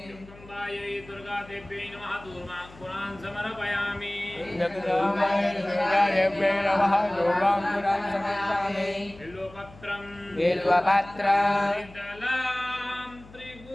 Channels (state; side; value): noise; left; hum, 21 dB below the sound